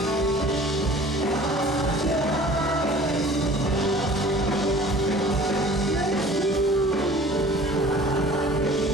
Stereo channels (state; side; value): normal; both; correlation 0.47